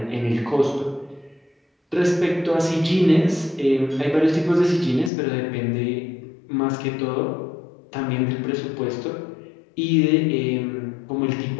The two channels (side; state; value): right; drops out; at 5.1 s